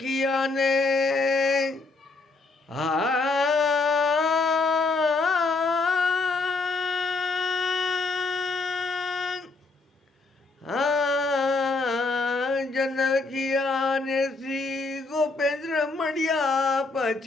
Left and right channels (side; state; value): right; quieter; 3.7 dB